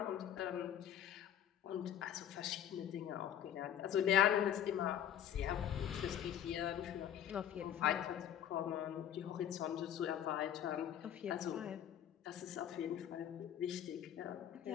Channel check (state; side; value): quieter; right; 10.2 dB